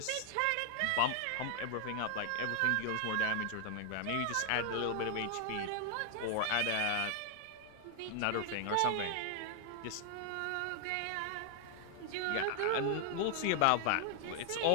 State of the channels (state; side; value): different; both; correlation 0.00